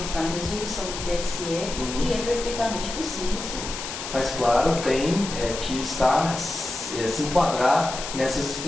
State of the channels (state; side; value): noise; left; hiss, 7 dB below the sound